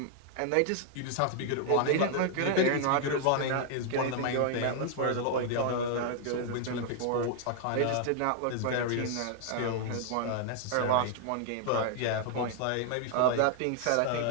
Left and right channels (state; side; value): different; both; correlation -0.01